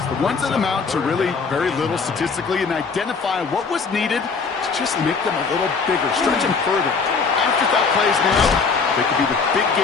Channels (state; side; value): quieter; right; 5.0 dB